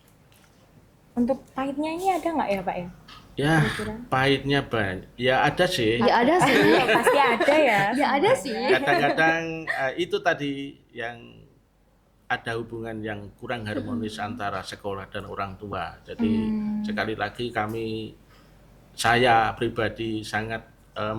Untuk pahitnya ini ada nggak ya Pak ya? Ya, pahitnya banyak. Ya ada sih. Ya ada sih. Pasti ada ya. Ya ada sih. Kadang-kadang itu tadi yang ada hubungan yang kurang harmonis antara sekolah dan orang tua. Jadi sekali lagi saya pribadi sangat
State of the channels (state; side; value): identical; both; correlation 1.00